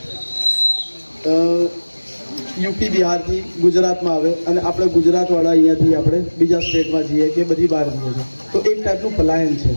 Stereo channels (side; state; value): both; inverted; correlation -1.00